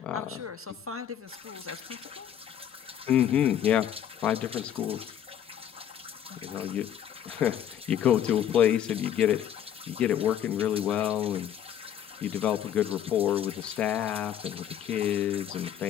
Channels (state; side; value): quieter; right; 10.1 dB